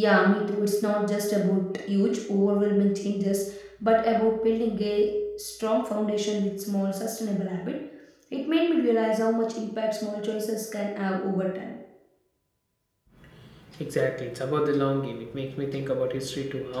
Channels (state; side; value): identical; both; correlation 1.00